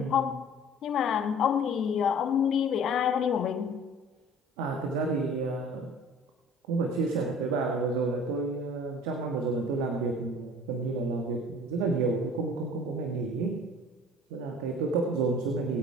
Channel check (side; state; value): both; normal; correlation 0.47